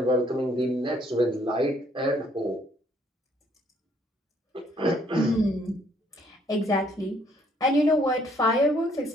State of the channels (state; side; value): normal; both; correlation 0.65